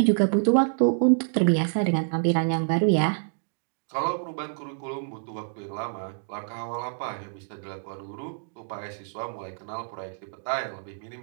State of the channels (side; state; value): left; silent; digital silence